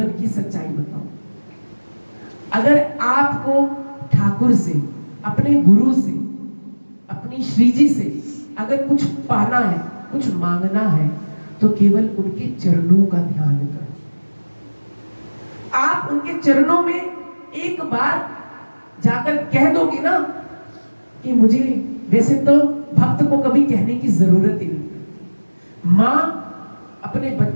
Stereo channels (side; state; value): both; inverted; correlation -1.00